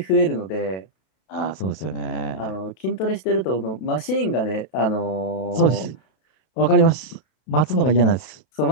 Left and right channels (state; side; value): late; right; 32 ms